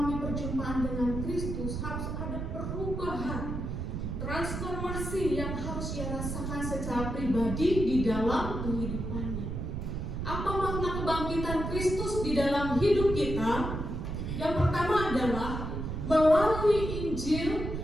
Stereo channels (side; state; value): right; noise; rumble, 4 dB below the sound